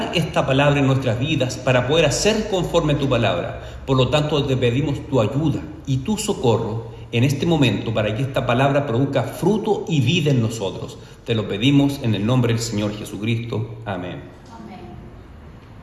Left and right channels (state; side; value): identical; both; correlation 1.00